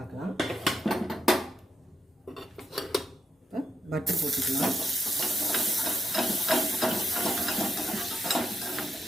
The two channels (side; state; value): both; normal; correlation 0.80